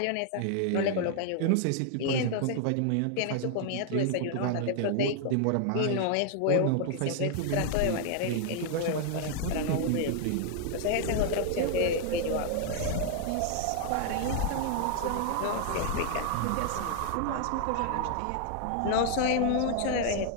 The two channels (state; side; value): different; both; correlation 0.00